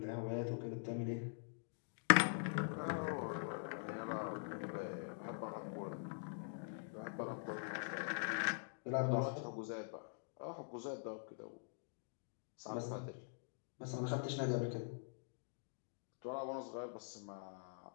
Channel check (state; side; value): silent; right; digital silence